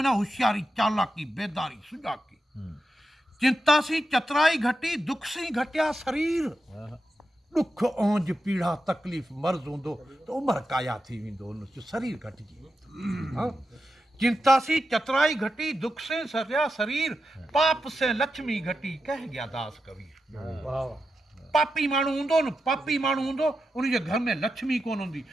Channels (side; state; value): both; normal; correlation 0.89